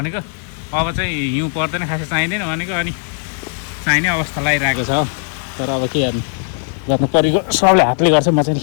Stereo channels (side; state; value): right; silent; 60 dB below the other